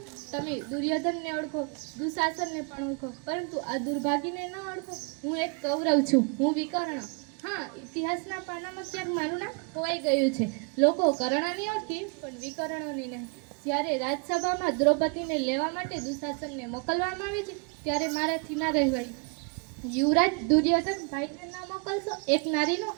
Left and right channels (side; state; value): left; quieter; 36.2 dB